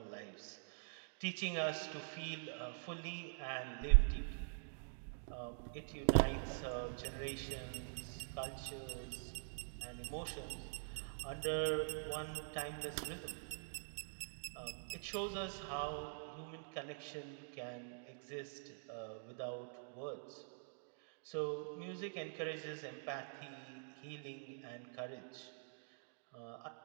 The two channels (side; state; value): left; silent; digital silence